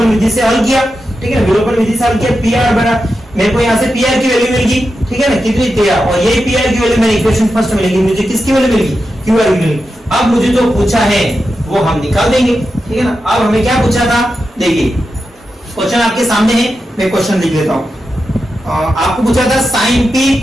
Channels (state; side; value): normal; both; correlation 0.89